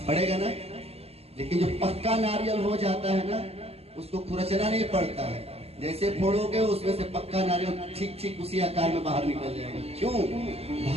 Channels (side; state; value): left; late; 0.29 ms